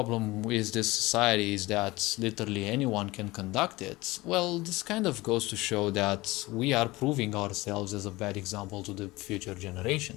with this society is that literally anyone can conduct it. Well, this kind of goes to show that we are proving ourselves as a bad example to the future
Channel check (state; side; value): quieter; right; 20.6 dB